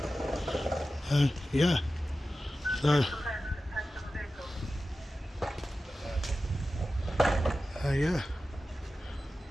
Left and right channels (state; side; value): normal; both; correlation 0.94